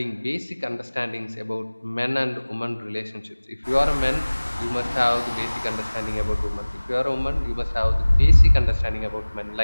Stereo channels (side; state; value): both; inverted; correlation -1.00